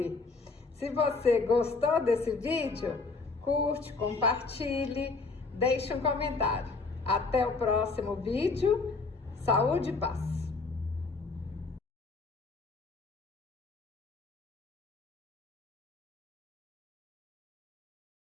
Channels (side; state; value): right; quieter; 4.0 dB